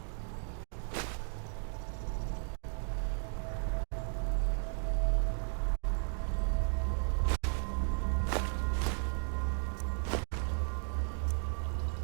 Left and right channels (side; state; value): left; silent; 54 dB below the other